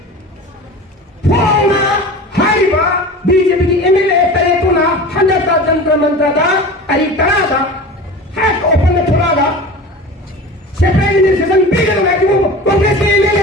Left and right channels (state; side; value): normal; both; correlation 0.34